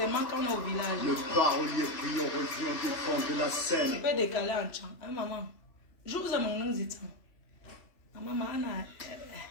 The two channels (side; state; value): right; late; 3.1 ms